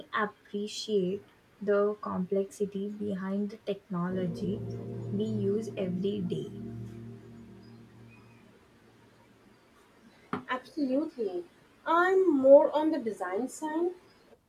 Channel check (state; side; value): identical; both; correlation 1.00